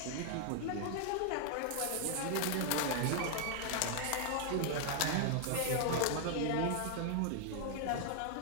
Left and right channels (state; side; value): different; both; correlation 0.00